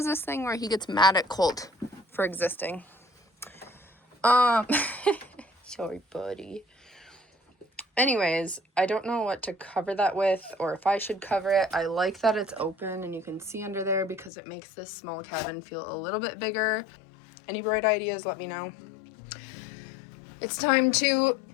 this thing where he gets mad at Colt for existing. Sorry, buddy. Anyways, I don't know what to cover that with or if I should cover it. I like that it's open and you can see under there because it makes this small cabin feel a little bit bigger. Any bright ideas, let me know. It's time to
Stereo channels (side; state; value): right; drops out; at 14.3 s